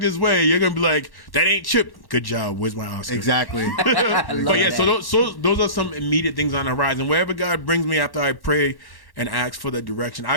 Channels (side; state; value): right; late; 1.1 ms